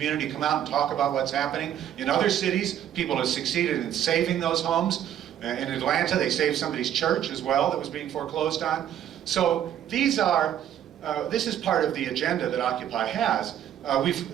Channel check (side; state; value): left; quieter; 10.5 dB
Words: come out and talk about what's happening. In other cities, people have succeeded in saving those homes. In Atlanta, they saved somebody's church as well that was being foreclosed on. So this is part of the agenda that Occupy has.